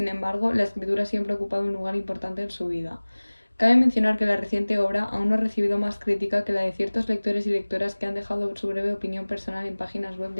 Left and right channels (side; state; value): both; inverted; correlation -1.00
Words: embargo la escritura siempre ha ocupado un lugar importante en su vida. Cabe mencionar que la reciente obra aún no ha recibido más crítica que la de ciertos lectores y lectoras que han dejado su breve opinión personal en páginas web